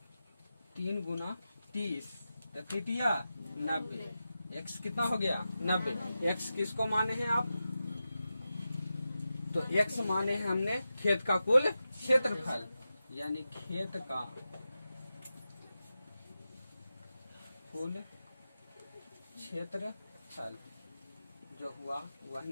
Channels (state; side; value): inverted; both; correlation -0.91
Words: 3 गुना 30 तृतीया 90। x कितना हो गया? 90। x किसको माने हैं आप? तो x माने हैं हमने खेत का कुल क्षेत्रफल, यानी खेत का कुल क्षेत्रफल जो हुआ वह